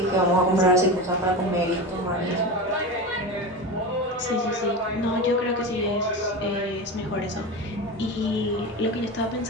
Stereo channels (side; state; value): both; normal; correlation 0.24